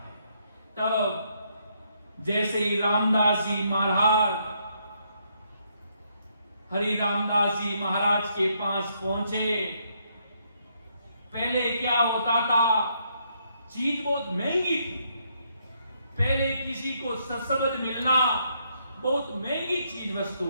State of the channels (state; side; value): inverted; both; correlation -0.74